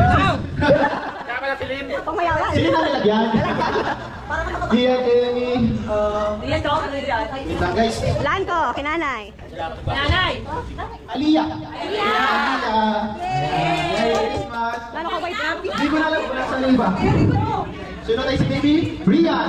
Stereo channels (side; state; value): both; identical; correlation 1.00